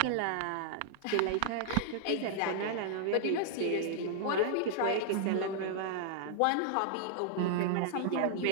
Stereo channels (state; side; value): different; both; correlation -0.01